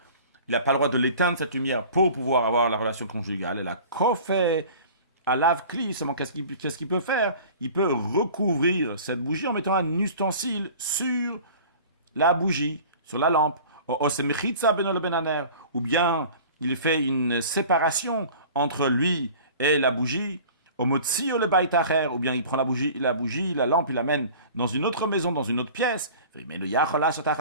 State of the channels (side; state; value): both; inverted; correlation -0.43